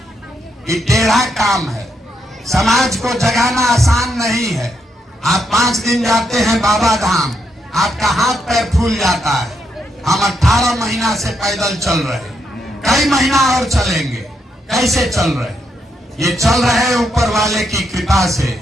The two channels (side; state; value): both; normal; correlation 0.79